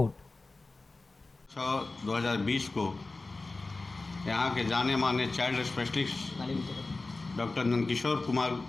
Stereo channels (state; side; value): quieter; right; 3.4 dB